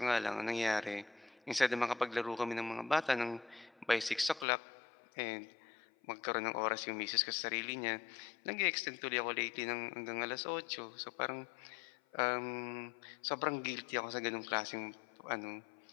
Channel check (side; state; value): right; drops out; at 4.5 s